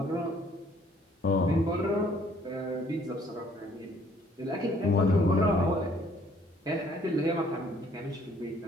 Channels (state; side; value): normal; both; correlation 0.61